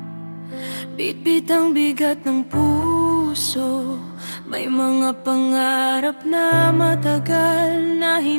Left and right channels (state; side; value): inverted; both; correlation -1.00